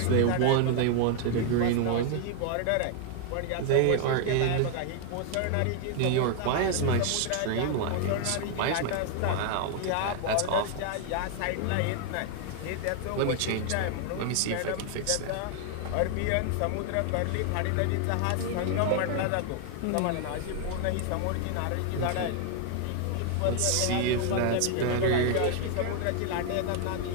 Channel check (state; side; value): different; both; correlation 0.00